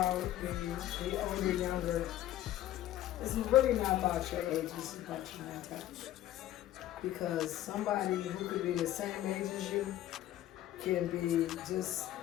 the older, younger, it's really not about your age, it's about your mentality. Because somebody who could be the same age as you can be just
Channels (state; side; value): quieter; right; 13.4 dB